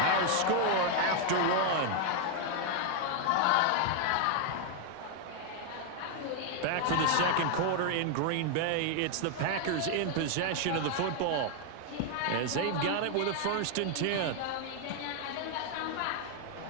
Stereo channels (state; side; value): different; both; correlation 0.00